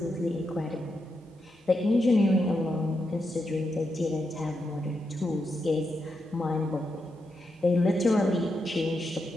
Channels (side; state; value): both; normal; correlation 0.84